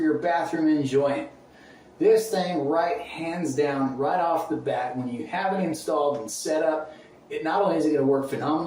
bathroom enjoyment, this thing right hands down, right off the bat, when you have it installed and set up, it not only is it going to work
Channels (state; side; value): identical; both; correlation 1.00